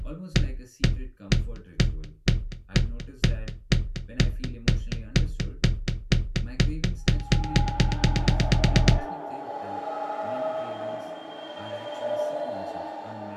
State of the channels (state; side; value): identical; both; correlation 1.00